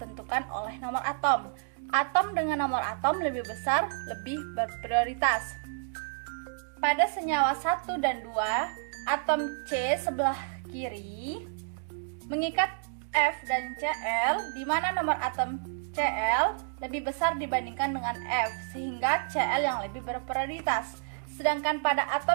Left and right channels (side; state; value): left; silent; digital silence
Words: oleh nomor atom. Atom dengan nomor atom lebih besar lebih berprioritas. Pada senyawa 1 dan 2, atom C sebelah kiri mengikat F dan Cl, di mana nomor atom Cl lebih besar dibandingkan dengan F, sehingga Cl yang lebih berprioritas. Sedangkan pada